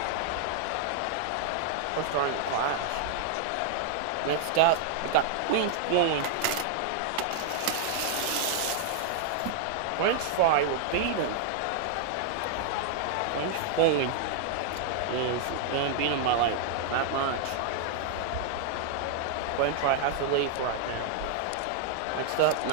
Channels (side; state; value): both; different; correlation -0.01